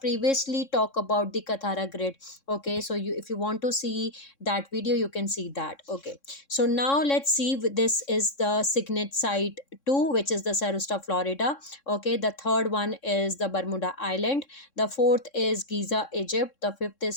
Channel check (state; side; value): late; right; 3.6 ms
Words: talked about the Kathara grid. Okay, so you, if you want to see that video, you can see that. Okay, so now let's see, this is the signet site 2, which is the Sarusta, Florida. Okay, the third one is the Bermuda Island, the fourth is Giza, Egypt, the fifth